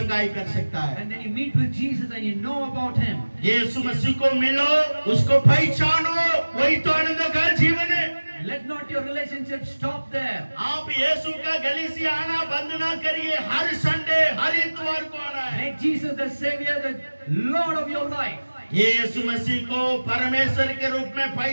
कर सकता है। And then you meet with Jesus and you know about Him. यीशु मसीह को मिलो, उसको पहचानो, वही तो आनंद का जीवन है। Let not your relationship stop there. आप यीशु का गली से आना बंद ना करिए, हर संडे हर इतवार को आना है। Make Jesus the Savior, the Lord of your life. यीशु मसीह को परमेश्वर के रूप में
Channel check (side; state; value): both; inverted; correlation -1.00